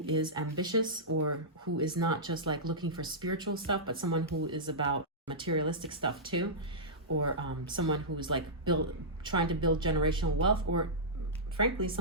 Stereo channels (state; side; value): normal; both; correlation -0.15